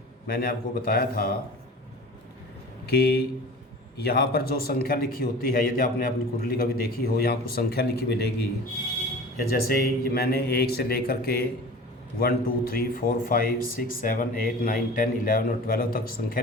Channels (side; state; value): both; normal; correlation 0.39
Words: मैंने आपको बताया था कि यहाँ पर जो संख्या लिखी होती है, यदि आपने अपनी कुंडली कभी देखी हो, यहाँ कुछ संख्या लिखी मिलेगी। या जैसे मैंने 1 से लेकर के 1 2 3 4 5 6 7 8 9 10 11 और 12 तक संख्या